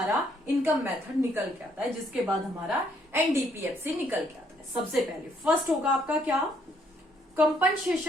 इनकम मेथड निकल के आता है, जिसके बाद हमारा एनडीपीएफसी निकल के आता है। सबसे पहले फर्स्ट होगा आपका क्या?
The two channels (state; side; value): normal; both; correlation 0.69